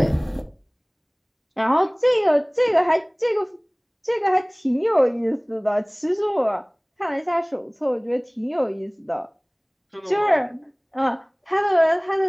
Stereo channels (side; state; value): both; identical; correlation 1.00